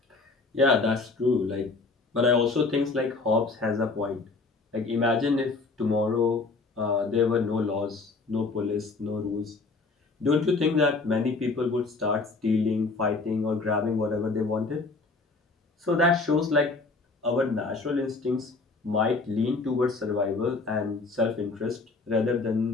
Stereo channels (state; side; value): quieter; right; 3.8 dB